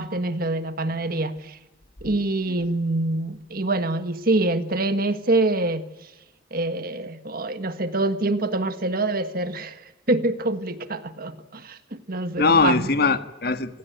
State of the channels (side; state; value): both; normal; correlation 0.21